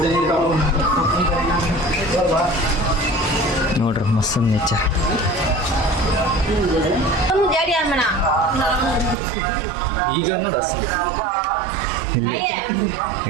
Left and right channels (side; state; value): left; drops out; at 9.2 s